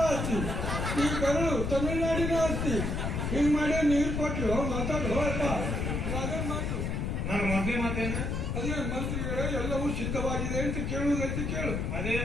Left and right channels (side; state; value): left; noise; rumble, 1 dB below the sound